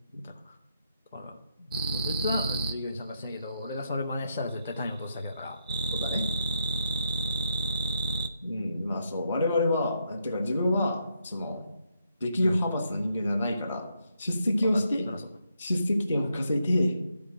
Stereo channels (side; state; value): both; inverted; correlation -0.79